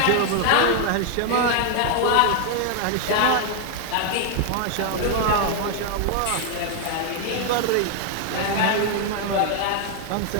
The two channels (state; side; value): different; both; correlation 0.00